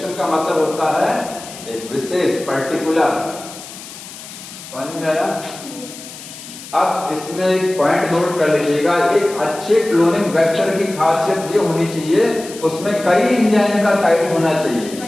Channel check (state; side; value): noise; left; hiss, 14 dB below the sound